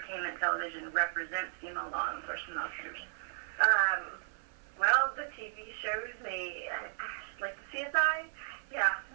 television represents female law enforcement officers? Well, the TV shows me, like the CSI, yeah,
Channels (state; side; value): silent; left; 54 dB below the other